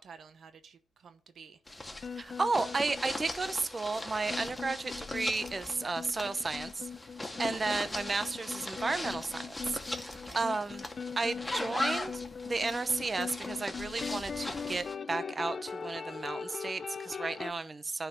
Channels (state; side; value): normal; both; correlation 0.92